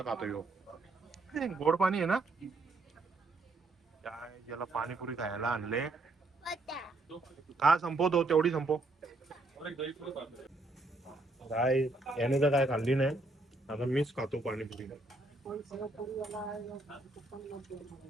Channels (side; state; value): left; quieter; 3.0 dB